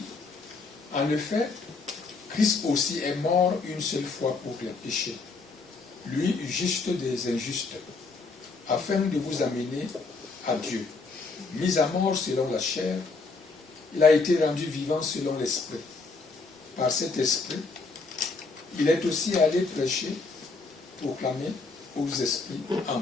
en effet, Christ aussi est mort une seule fois pour les péchés, lui juste des injustes, afin de vous amener à Dieu. Mis à mort selon la chair, il a été rendu vivant selon l'esprit. Par cet esprit, il est aussi allé prêcher, proclamer aux esprits en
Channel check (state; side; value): quieter; right; 4.0 dB